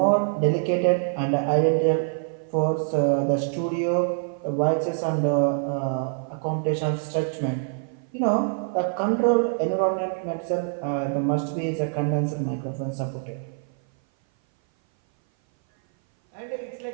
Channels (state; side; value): silent; left; 58 dB below the other